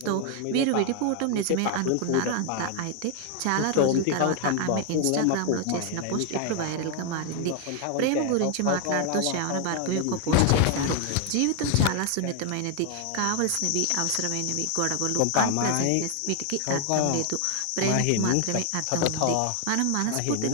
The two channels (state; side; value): different; both; correlation 0.01